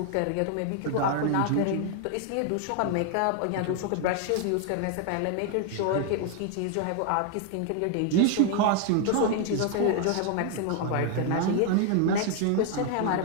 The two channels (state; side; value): different; both; correlation 0.00